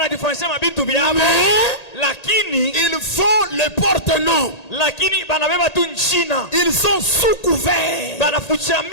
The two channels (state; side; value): late; right; 1.8 ms